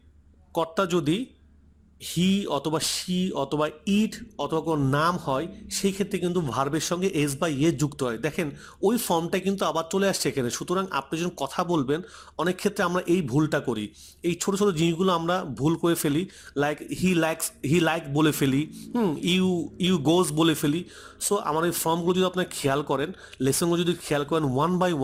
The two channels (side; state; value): both; identical; correlation 1.00